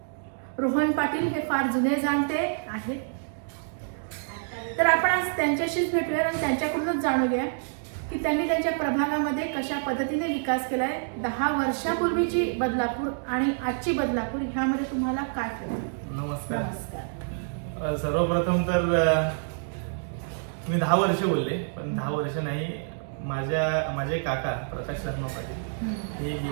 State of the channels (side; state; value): left; silent; digital silence